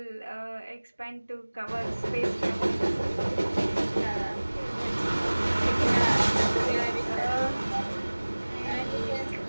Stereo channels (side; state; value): both; inverted; correlation -1.00